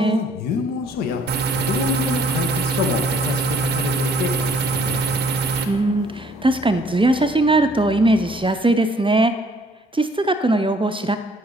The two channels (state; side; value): normal; both; correlation 0.61